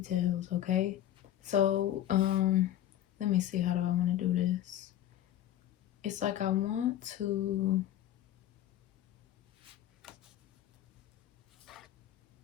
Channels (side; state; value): right; quieter; 12.2 dB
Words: okay? So, let me see, how do I want to do this? It's like I want to